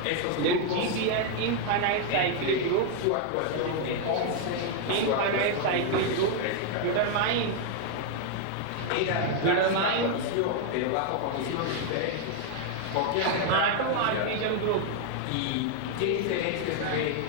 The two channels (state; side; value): different; both; correlation 0.00